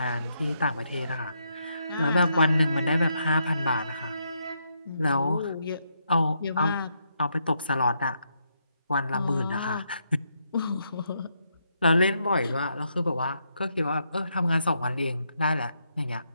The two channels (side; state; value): both; inverted; correlation -0.78